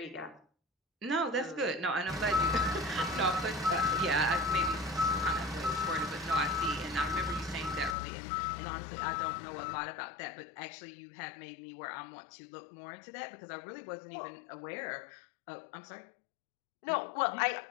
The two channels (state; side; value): drops out; right; at 8.0 s